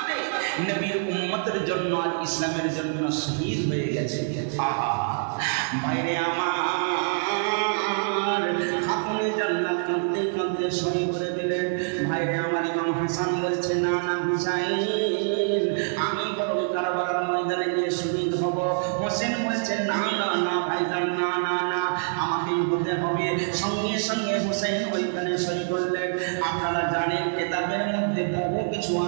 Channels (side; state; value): left; silent; digital silence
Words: নবীর উম্মতের জন্য আর ইসলামের জন্য শহীদ হয়ে গেছে। আহা ভাইরে আমার, খাতুনে জান্নাত কাঁদতে কাঁদতে সই করে দিলেন। ভাইরে আমার, ইমাম হাসান বলছে না না হুসাইন, আমি বরং কারবালার ময়দানে গিয়ে শহীদ হব। হোসেন বলছে না না না ভাইজান, না না না, আমাকেই হতে হবে। সঙ্গে সঙ্গে হোসেন ওইখানে সই করলেন। আপনারা জানেন কেতাবের মধ্যে বহু কিছু